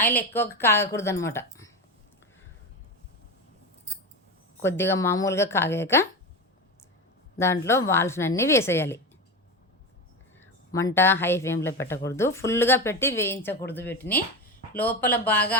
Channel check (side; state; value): both; normal; correlation 0.20